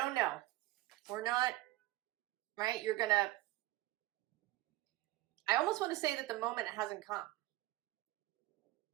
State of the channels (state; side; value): quieter; left; 17.7 dB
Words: know. We're not, right? You're gonna, I almost want to say that the moment hasn't come.